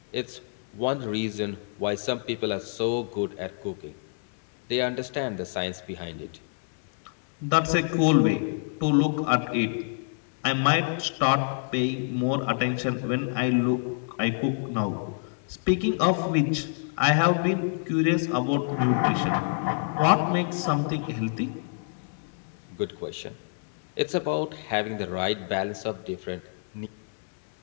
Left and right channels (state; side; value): silent; right; digital silence